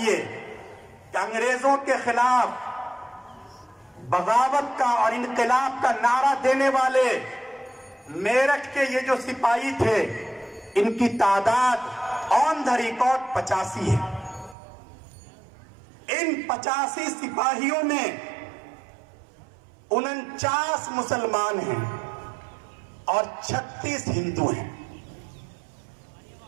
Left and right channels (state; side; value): drops out; left; at 14.6 s